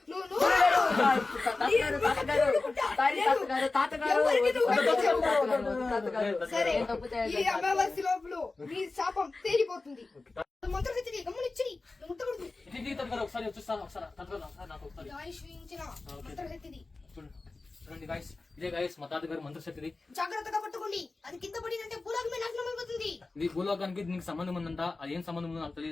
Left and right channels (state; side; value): quieter; right; 3.5 dB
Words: అమావాస్య లోపల మీ శాపం తేలిపోతుంది. ఒకసారి చూస్తాను నాకు ఒకసారి ఇదే గాయస్ మా తాతగారు మంత్రశక్తిది. జాగ్రత్తగా పట్టుకోండి, అది కింద పడిందంటే భూలోకమే నాశనం అయిపోతుంది. ఇది భూలోకానికి నీకు సంబంధం ఉందంట, అది ఏం సంబంధం ఉందో నాకు